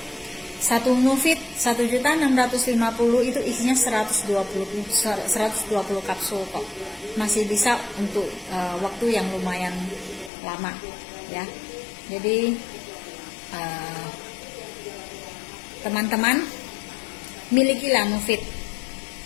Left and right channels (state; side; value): drops out; right; at 10.3 s